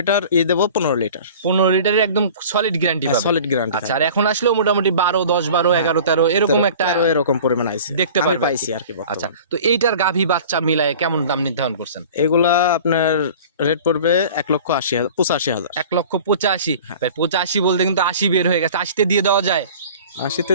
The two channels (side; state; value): both; inverted; correlation -0.43